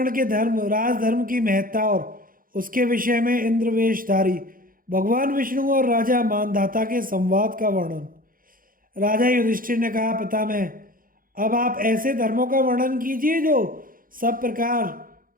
के धर्म राजधर्म की महत्ता और उसके विषय में इंद्रवेशधारी भगवान विष्णु और राजा मानधाता के संवाद का वर्णन। राजा युधिष्ठिर ने कहा, पितामह, अब आप ऐसे धर्मों का वर्णन कीजिए जो सब प्रकार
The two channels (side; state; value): left; late; 0.41 ms